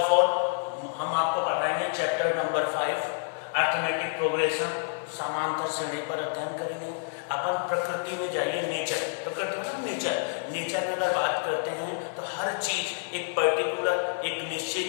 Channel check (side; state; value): right; silent; digital silence